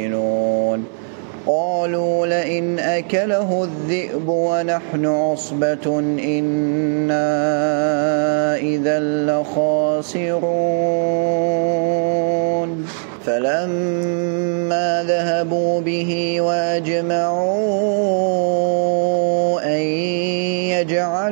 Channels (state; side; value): silent; left; 67 dB below the other